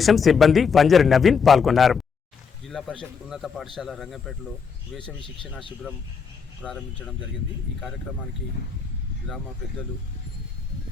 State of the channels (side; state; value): right; quieter; 6.0 dB